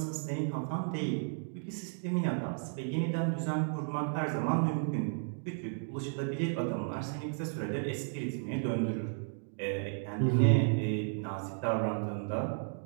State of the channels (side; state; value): left; silent; digital silence